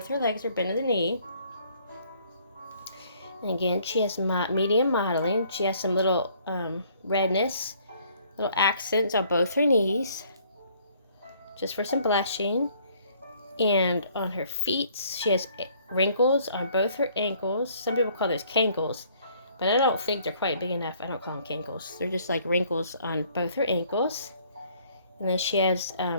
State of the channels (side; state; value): both; inverted; correlation -0.62